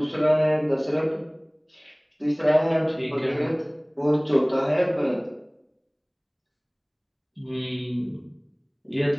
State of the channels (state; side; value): identical; both; correlation 1.00